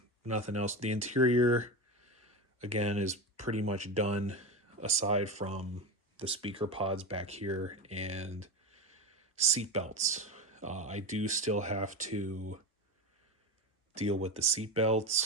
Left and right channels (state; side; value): normal; both; correlation 0.21